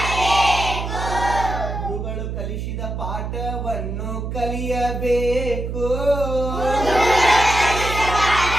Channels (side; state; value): right; noise; hum, 5 dB below the sound